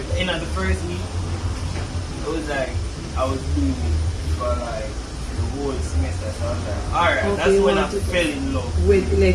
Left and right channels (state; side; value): identical; both; correlation 1.00